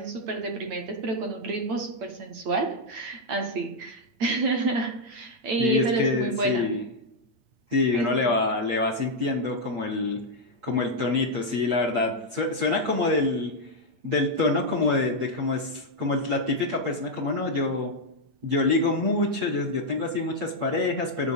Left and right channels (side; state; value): left; late; 8.5 ms